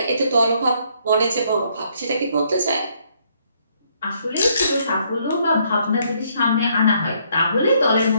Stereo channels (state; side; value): inverted; both; correlation -0.69